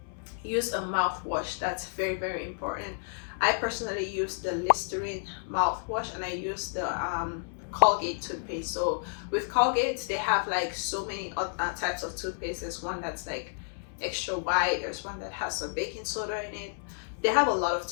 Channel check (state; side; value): silent; right; 57 dB below the other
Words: use a mouthwash. That's very, very important. I personally use the Listerine mouthwash, and I use the Colgate toothpaste. So with Colgate, they have like so many types of toothpaste. There's one that's like extra white, there's one that has some baking soda in it. They have a lot of